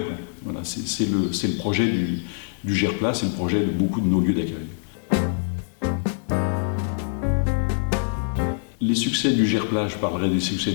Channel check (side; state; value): right; silent; digital silence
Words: Voilà, c'est le projet du GERPLA, c'est le projet de beaucoup de nos lieux d'accueil. Les succès du GERPLA, je parlerai des succès